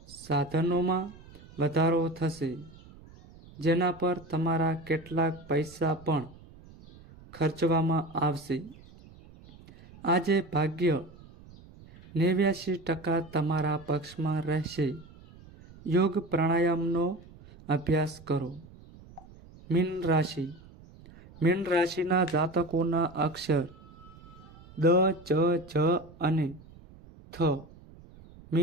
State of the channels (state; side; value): noise; right; rumble, 21 dB below the sound